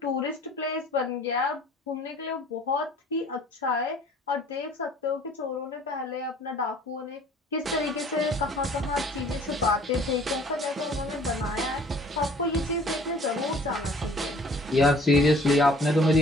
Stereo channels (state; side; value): normal; both; correlation 0.53